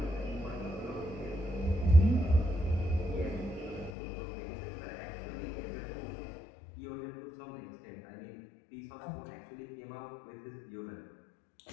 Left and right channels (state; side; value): drops out; right; at 3.9 s